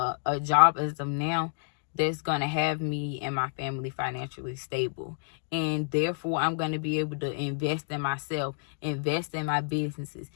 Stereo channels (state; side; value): silent; right; digital silence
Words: job as of now, that's going to have me and my family financially stable. And therefore, I'm going to be able to invest in myself, invest in my businesses,